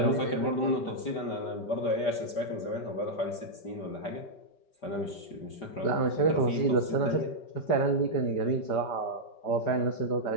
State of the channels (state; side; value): late; right; 5.3 ms